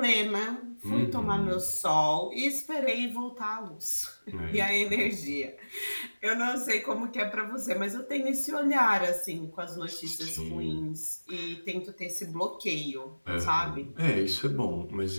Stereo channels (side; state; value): both; inverted; correlation -1.00